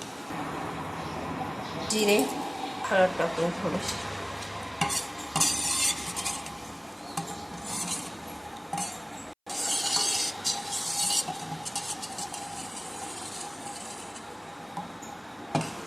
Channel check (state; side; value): identical; both; correlation 1.00